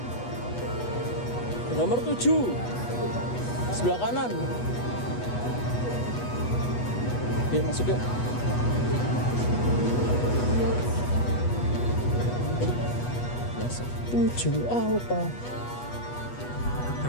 Nomor 7 sebelah kanan. Yuk masuk yuk. Biasa 7 Alfa.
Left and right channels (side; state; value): right; late; 8.2 ms